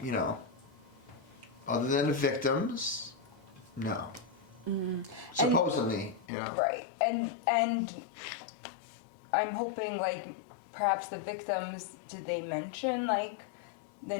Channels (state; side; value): drops out; right; at 6.2 s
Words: other than the victims, no. Supposedly, Right, and I'm hoping perhaps the victims. Did they mention the